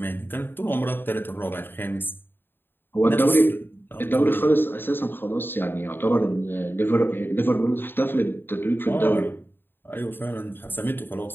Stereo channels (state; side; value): late; right; 0.098 ms